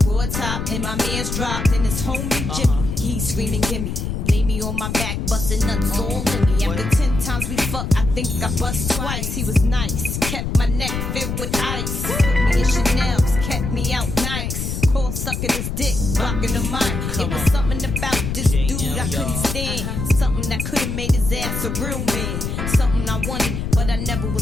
raw top, and my man's dropped. And his homie Jimmy, he's screaming, gimme. Lay me on my back, busting nuts all in me. After 10 times we fucked, I think I bust twice. He was nice, kept my neck filled with ice. Put me in Chanel's, kept me out nice. Call sucking his dick, blocking the mic. It was something about this dude I couldn't stand. Something that could've made his ass a real man. Something I wanted, but I never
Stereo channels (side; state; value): left; noise; rumble, 3 dB below the sound